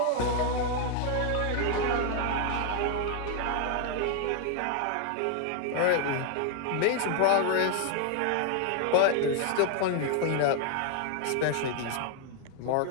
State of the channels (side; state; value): both; different; correlation 0.00